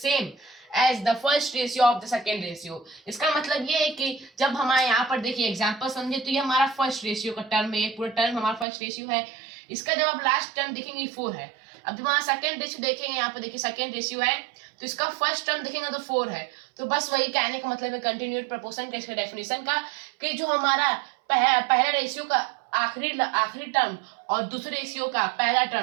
as the first ratio of the second ratio. इसका मतलब ये है कि जब हमारे यहाँ पर देखिए एग्जांपल समझे, तो ये हमारा फर्स्ट रेशियो का टर्म है, ये पूरा टर्म हमारा फर्स्ट रेशियो है। इसका जब आप लास्ट टर्म देखेंगे 4 है। अब जब हमारा सेकंड रेशियो देखेंगे, यहाँ पर देखिए सेकंड रेशियो है, तो इसका फर्स्ट टर्म देखेंगे तो 4 है। तो बस वही कहने का मतलब है कंटिन्यूड प्रपोर्शन का, इसके डेफिनेशन का, कि जो हमारा पहला रेशियो का आखिरी टर्म और दूसरे रेशियो का पहला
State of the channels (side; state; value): left; drops out; at 8.7 s